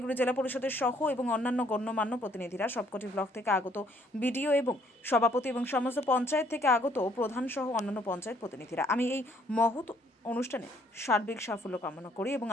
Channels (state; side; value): normal; both; correlation 0.64